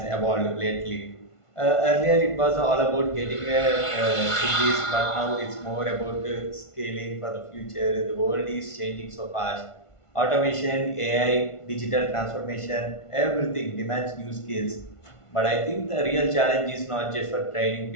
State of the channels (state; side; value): late; right; 1.5 ms